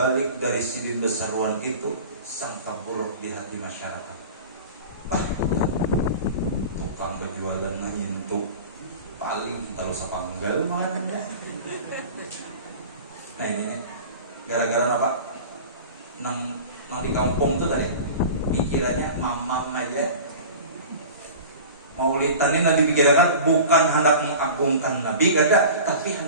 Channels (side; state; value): both; inverted; correlation -0.37